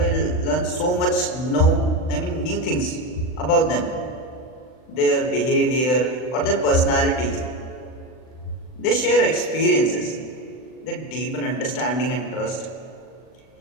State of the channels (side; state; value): right; late; 39 ms